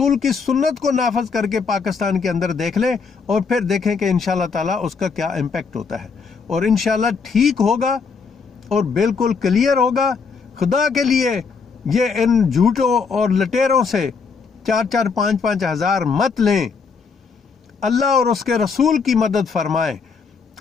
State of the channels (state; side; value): quieter; right; 5.3 dB